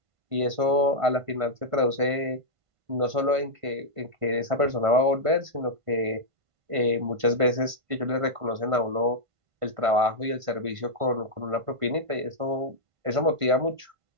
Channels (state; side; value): late; left; 1.5 ms